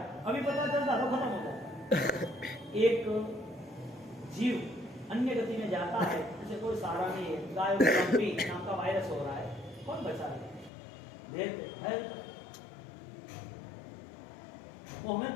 अभी पता चलता तो खत्म हो जाता। एक जीव अन्य गति में जाता है, उसे कोई सहारा नहीं है, गाय नाम का वायरस हो रहा है, कौन बचाएगा? वो हमें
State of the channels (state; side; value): drops out; right; at 10.7 s